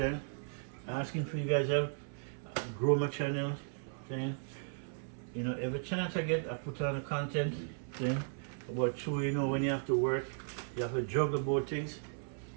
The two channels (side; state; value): left; silent; 54 dB below the other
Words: Asking for you guys help grow my channel. Saying, you know, every chance I get, I put on the content. Saying, but true, you know, when you have to work, you have to juggle both things.